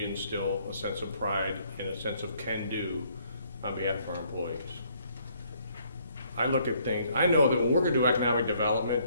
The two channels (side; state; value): both; inverted; correlation -0.66